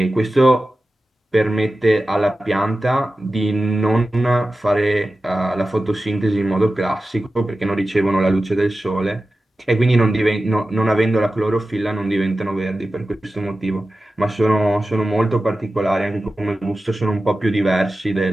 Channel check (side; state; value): both; normal; correlation 0.94